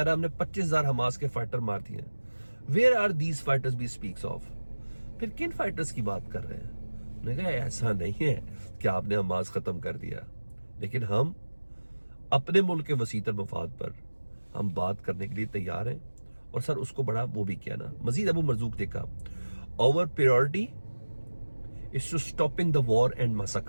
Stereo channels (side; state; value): both; inverted; correlation -1.00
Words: रहा है हमने 25,000 हमास के फाइटर मार दिए। Where are these fighters he speaks of. फिर किन फाइटर्स की बात कर रहे हैं। उन्होंने कहा ऐसा नहीं है कि आपने हमास खत्म कर दिया, लेकिन हम अपने मुल्क के वसीतर मफाद पर हम बात करने के लिए तैयार हैं। और सर उसको बड़ा वो भी किया ना। मजीद अबू मरजूक ने कहा our priority is to stopping the war and